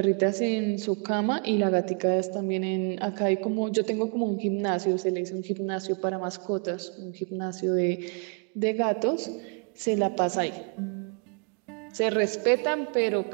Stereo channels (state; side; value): quieter; left; 39.9 dB